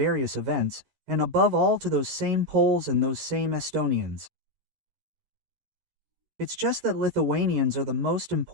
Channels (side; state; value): left; late; 13 ms